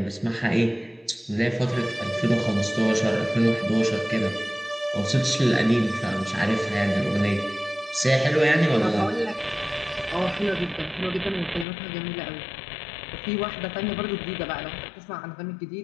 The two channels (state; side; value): drops out; right; at 11.7 s